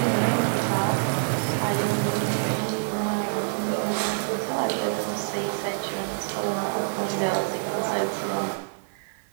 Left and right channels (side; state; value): left; silent; digital silence